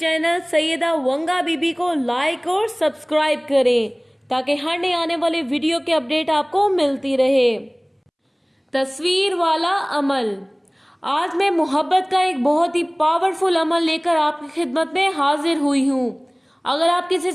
سیدہ ونگا بی بی کو لائک اور سبسکرائب کریں تاکہ ہر نئے آنے والے ویڈیو کے اپڈیٹ آپ کو ملتی رہے۔ تصویر والا عمل۔ آج میں محبت کا ایک بہت ہی پاورفل عمل لے کر آپ کی خدمت میں حاضر ہوئی ہوں۔ اگر آپ کسی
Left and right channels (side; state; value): both; identical; correlation 1.00